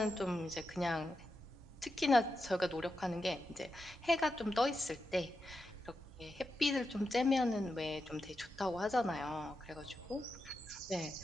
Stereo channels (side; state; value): both; normal; correlation 0.88